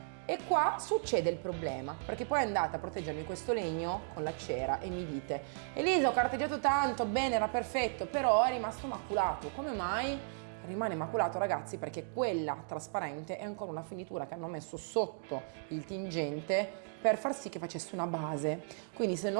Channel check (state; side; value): silent; left; digital silence